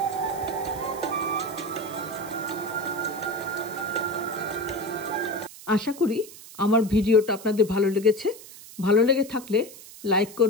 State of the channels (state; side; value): noise; right; hiss, 17 dB below the sound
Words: আশা করি আমার ভিডিওটা আপনাদের ভালো লেগেছে। ভালো লেগে থাকলে লাইক